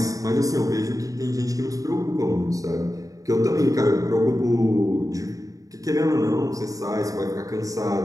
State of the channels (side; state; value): left; late; 0.17 ms